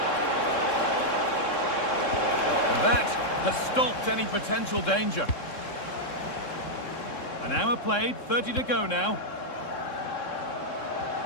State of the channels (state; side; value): late; right; 3.7 ms